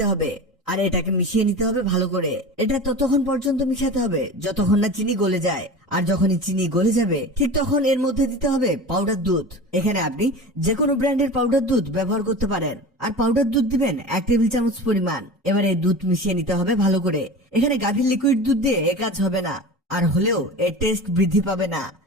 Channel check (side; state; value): both; normal; correlation 0.32